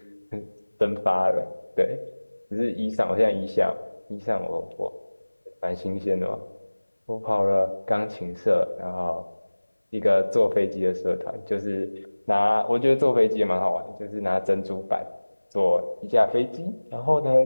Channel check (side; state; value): both; inverted; correlation -1.00